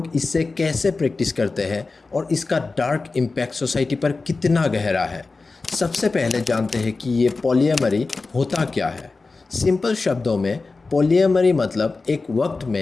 इससे कैसे प्रैक्टिस करते हैं और इसका डार्क इम्पैक्ट सोसाइटी पर कितना गहरा है। सबसे पहले जानते हैं कि ये पॉलीएमरी होता क्या है। सिंपल शब्दों में पॉलीएमरी मतलब एक वक्त में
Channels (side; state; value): right; quieter; 3.8 dB